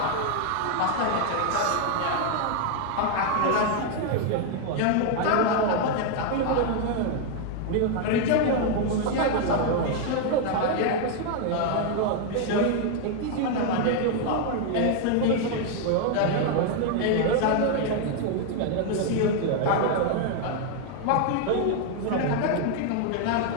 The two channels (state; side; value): different; both; correlation 0.00